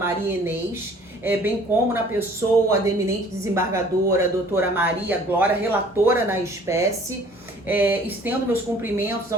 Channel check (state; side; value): normal; both; correlation 0.53